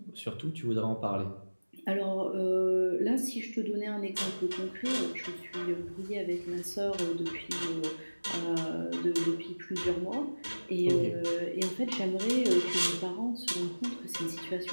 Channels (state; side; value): inverted; both; correlation -1.00